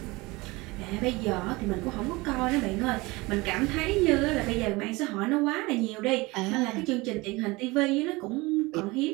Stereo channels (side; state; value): left; quieter; 23.1 dB